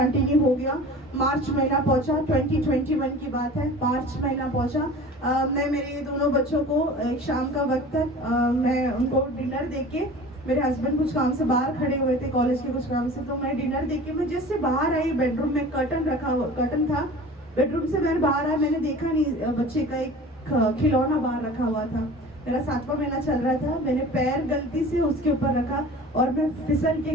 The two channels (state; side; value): normal; both; correlation 0.40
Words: हो गया। मार्च महीना पहुंचा, 2021 की बात है, मार्च महीना पहुंचा। मैं मेरे दोनों बच्चों को एक शाम का वक्त तक मैं उनको डिनर दे के, मेरे हस्बैंड कुछ काम से बाहर खड़े हुए थे कॉलेज के कुछ काम से, तो मैं डिनर दे के मैं जैसे बाहर आई, बेडरूम में कर्टन था, बेडरूम से मैंने बाहर आया, मैंने देखा नहीं बच्चे का एक खिलौना बाहर रखा हुआ था। मेरा 7वां महीना चल रहा था, मैंने पैर गलती से उसके ऊपर रखा और मैं फिसल